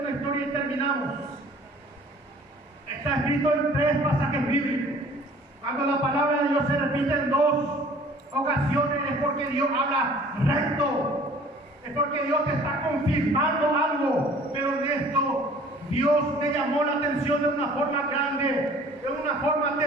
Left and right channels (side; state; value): both; normal; correlation 0.51